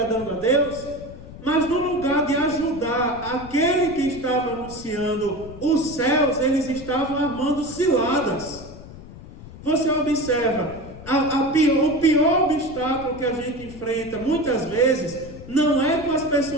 a Deus? Mas no lugar de ajudar aquele que estava anunciando os céus, eles estavam armando ciladas. Você observa, o pior obstáculo que a gente enfrenta, muitas vezes, não é com as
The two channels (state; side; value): noise; left; rumble, 16 dB below the sound